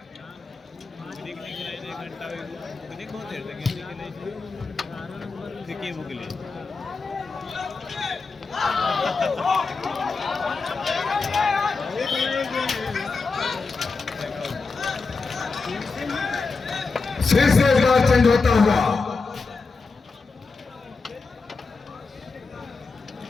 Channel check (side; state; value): right; quieter; 4.3 dB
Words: फिर से एक बार चेंज होता हुआ,